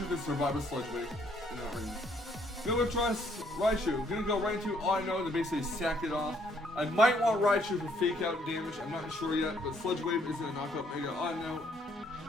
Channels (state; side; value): normal; both; correlation 0.67